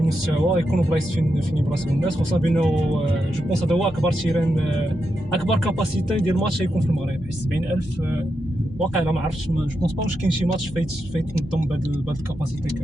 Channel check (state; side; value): normal; both; correlation 0.86